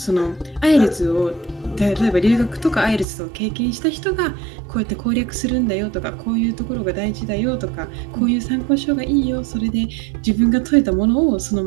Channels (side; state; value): left; drops out; at 3.1 s